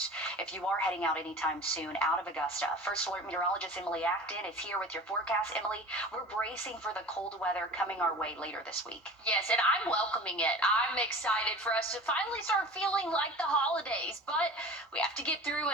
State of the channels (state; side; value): normal; both; correlation 0.38